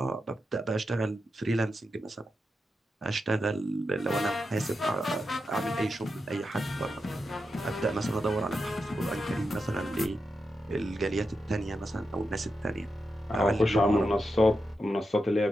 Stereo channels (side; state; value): both; normal; correlation 0.88